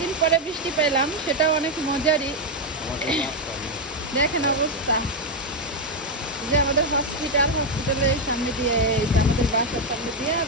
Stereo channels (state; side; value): normal; both; correlation 0.03